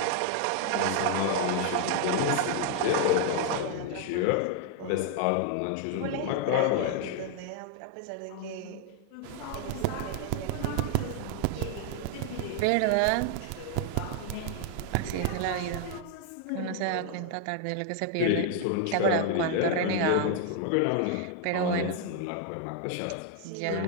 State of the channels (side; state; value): both; different; correlation 0.00